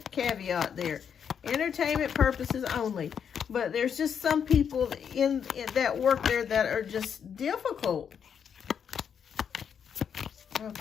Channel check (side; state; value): right; quieter; 7.6 dB